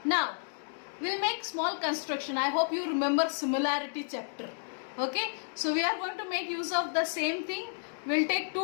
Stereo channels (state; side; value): silent; right; digital silence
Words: Now, we'll make small construction. I hope you remember similarity chapter. Okay. So, we are going to make use of the same thing. We'll take